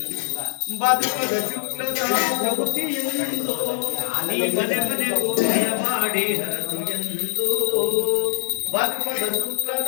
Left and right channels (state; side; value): silent; right; 63 dB below the other